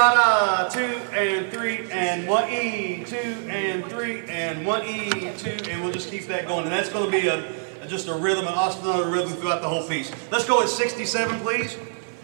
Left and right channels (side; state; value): left; silent; digital silence